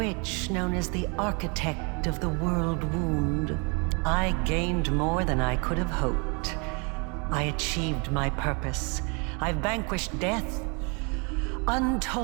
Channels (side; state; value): left; quieter; 33.2 dB